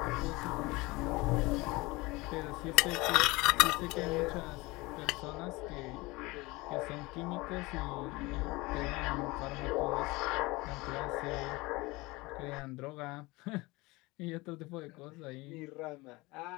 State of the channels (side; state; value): right; quieter; 22.7 dB